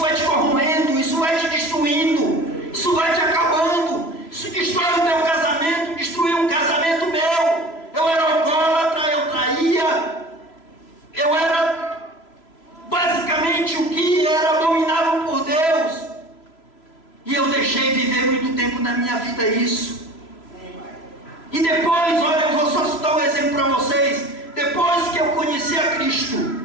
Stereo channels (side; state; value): right; late; 3.0 ms